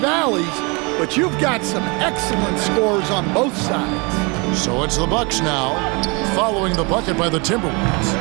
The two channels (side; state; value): left; quieter; 29.8 dB